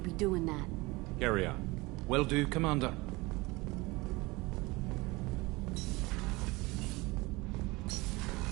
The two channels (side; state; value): left; quieter; 23.1 dB